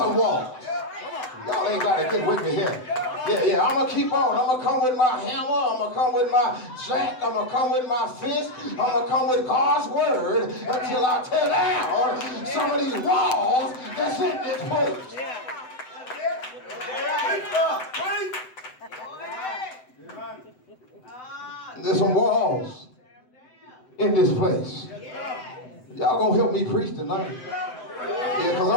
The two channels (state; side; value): late; right; 7.9 ms